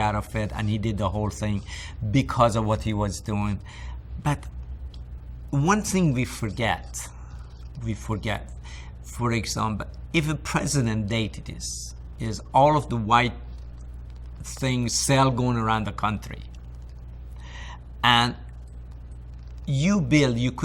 of it, and he did the whole thing because of what he was doing. But one thing we forget, for example, if a president dated is all of the white things still going around the country. And you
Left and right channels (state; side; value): identical; both; correlation 1.00